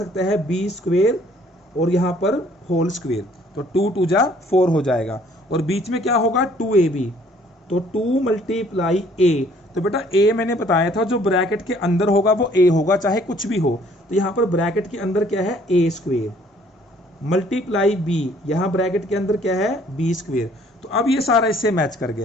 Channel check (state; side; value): normal; both; correlation 0.59